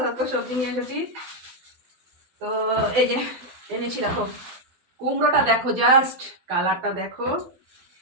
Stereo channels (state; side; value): late; left; 12 ms